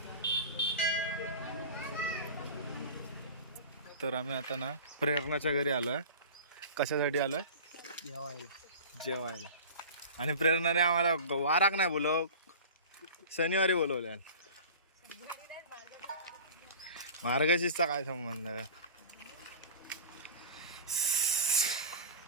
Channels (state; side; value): inverted; both; correlation -0.36